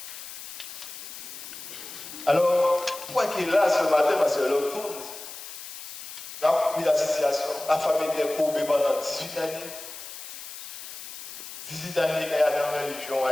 Alors, pourquoi qu'il est là ce matin? Parce que l'autre tourne. Là, la situation, la famille était courbée pendant 18 années. 18 années qu'il y a dans la religion,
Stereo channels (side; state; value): left; noise; hiss, 11 dB below the sound